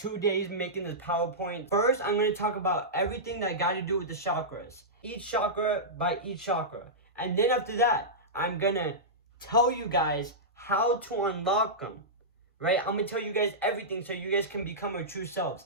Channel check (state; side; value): normal; both; correlation -0.14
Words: days making this PowerPoint. First, I'm going to talk about everything that got to do with the chakras. Each chakra by each chakra. And then after that, I'm going to tell you guys how to unlock them. Right? I'm going to tell you guys everything so you guys can become your true selves.